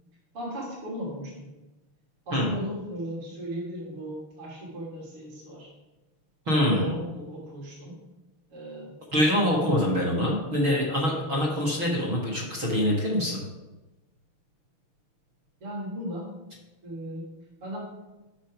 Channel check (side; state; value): left; late; 6.3 ms